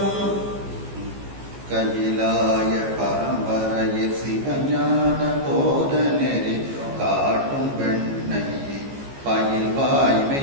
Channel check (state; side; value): late; left; 15 ms